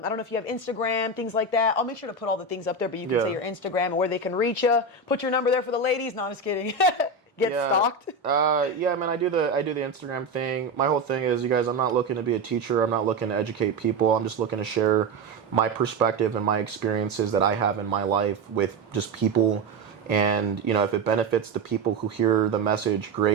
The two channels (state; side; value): quieter; left; 3.5 dB